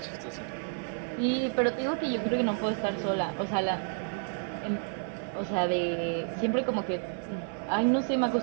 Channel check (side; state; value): left; silent; 57 dB below the other